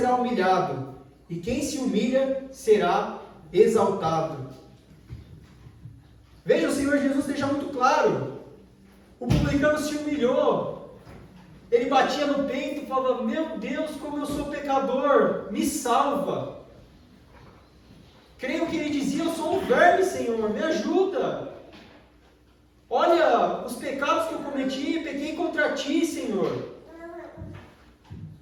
humilhado, e quem se humilha será exaltado. Veja, o Senhor Jesus deixa muito claro. O publicano se humilhou. Ele batia no peito e falava: meu Deus, como eu sou pecador, me salva. Creio que ele dizia: eu sou um verme, Senhor, me ajuda. Olha os pecados que eu cometi, pequei contra ti, Senhor.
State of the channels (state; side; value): identical; both; correlation 1.00